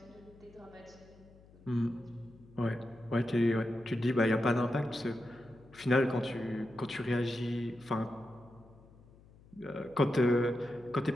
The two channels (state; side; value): noise; left; hum, 24 dB below the sound